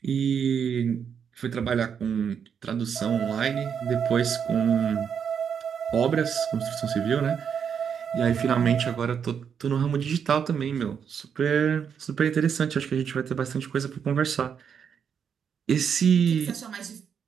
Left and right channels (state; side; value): quieter; left; 7.4 dB